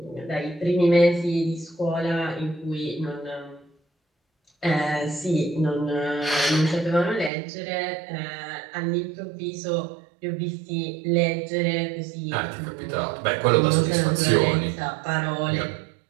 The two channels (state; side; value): drops out; left; at 7.3 s